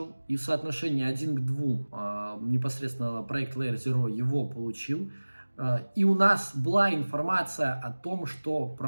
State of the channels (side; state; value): both; inverted; correlation -1.00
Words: и в соотношении 1 к 2 непосредственно проект Layer Zero его получил. И у нас была информация о том, что